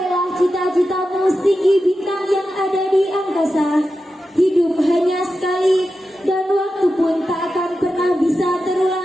cita-citamu setinggi bintang yang ada di angkasa. Hidup hanya sekali, dan waktu pun tak akan pernah bisa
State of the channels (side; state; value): both; normal; correlation 0.91